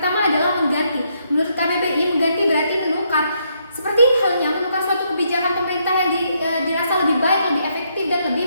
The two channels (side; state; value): both; inverted; correlation -0.75